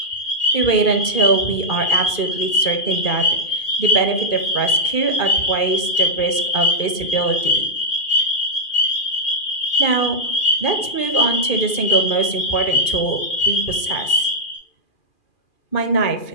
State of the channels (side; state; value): right; late; 2.4 ms